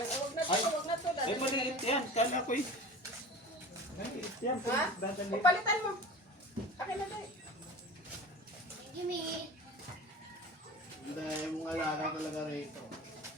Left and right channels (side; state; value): both; normal; correlation 0.35